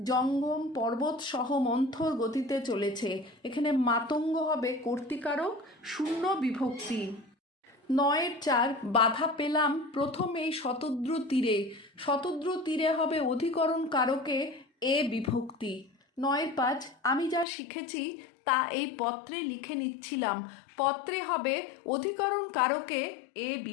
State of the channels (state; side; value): drops out; right; at 17.4 s